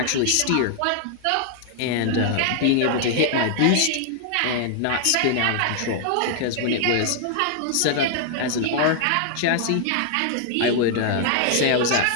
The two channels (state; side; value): different; both; correlation 0.00